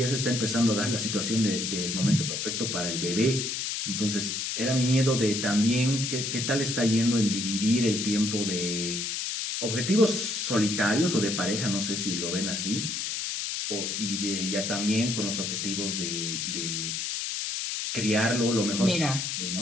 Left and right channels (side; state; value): left; noise; hiss, 2 dB below the sound